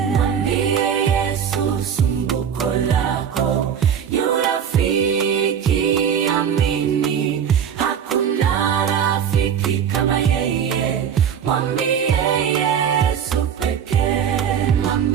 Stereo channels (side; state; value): left; quieter; 8.2 dB